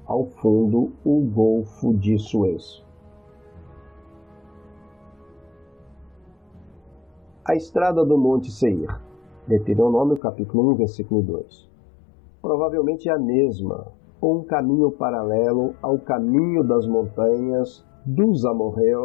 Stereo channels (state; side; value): drops out; right; at 10.2 s